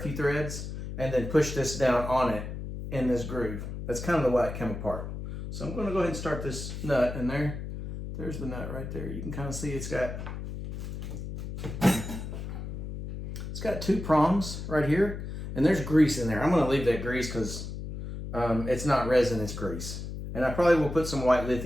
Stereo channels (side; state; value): left; noise; hum, 7 dB below the sound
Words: threads, and then push this down on it in this groove. That's kind of the way it came apart. So I'm gonna go ahead and start this nut, and there's the nut right there. You can kind of see it's got two prongs right here, and there's grease in there. I'm gonna leave that grease because it's not resin, it's grease. And I probably will put some white